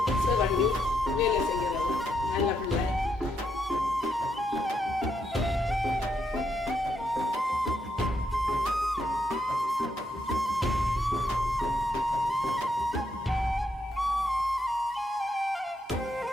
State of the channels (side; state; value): both; normal; correlation 0.78